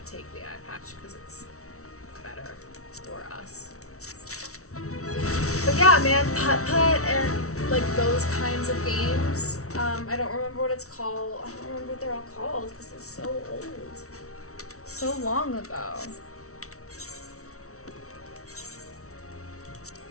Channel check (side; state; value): right; late; 0.64 ms